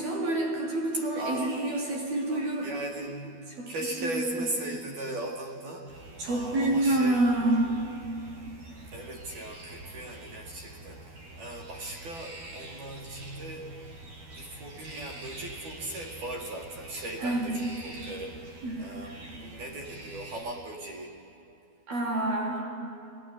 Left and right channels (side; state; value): left; late; 12 ms